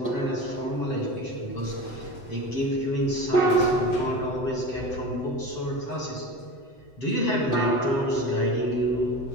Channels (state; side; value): late; right; 8.0 ms